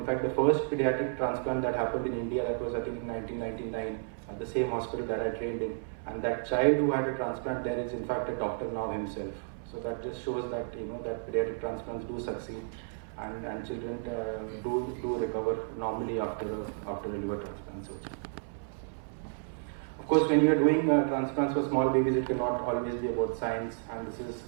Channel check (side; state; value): left; silent; 57 dB below the other